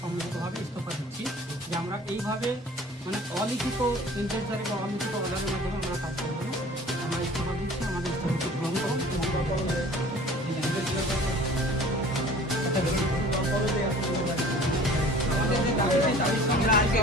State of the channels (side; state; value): both; normal; correlation 0.46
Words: সম্মিলিতভাবে ইস্তফা দিচ্ছি যে আমরা এইভাবে মানে অলিখিত ইন্টেন্সারি বা অলিখিত অর্ডারের মাধ্যমে আমরা কাজ করবো না। আমরা ইস্তফা দিচ্ছি, আমাদের ইস্তফাকে গ্রহণ করুন